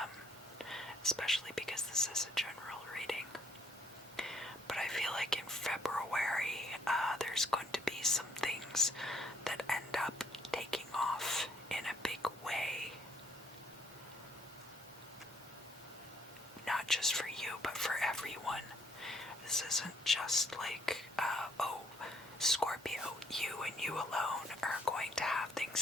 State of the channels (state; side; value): normal; both; correlation 0.68